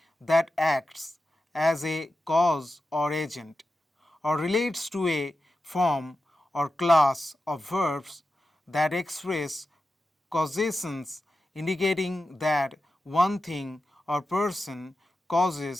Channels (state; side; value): normal; both; correlation 0.92